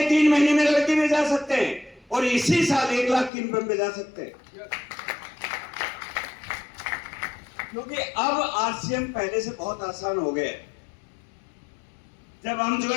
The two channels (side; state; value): right; drops out; at 3.3 s